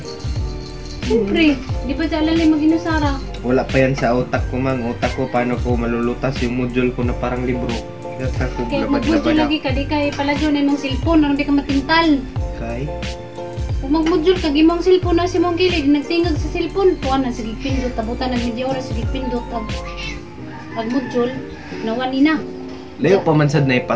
Siyempre, di ba dyan lalay maginusara? Wala pa yan sa utak ko mang. Utak ko paano ko malulutas yung module ko na parang libro. Kaya ko Kaya magbudyo labad-labad lagi ka, di ka ipalagyo na imong cellphone, ano di ka matintal. Kay? Kung magmodule ka, gimong cellphone na si mong kilid, nagtingag sa cellphone, tuwan na, sige pindot, tabutan ng media oras, sige pindot, ag module, nawan na. Layo pa man sad na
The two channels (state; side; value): identical; both; correlation 1.00